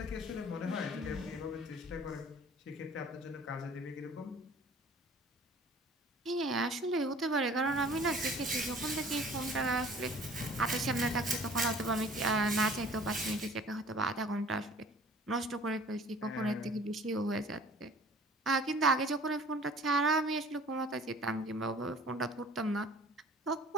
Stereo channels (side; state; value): both; normal; correlation 0.49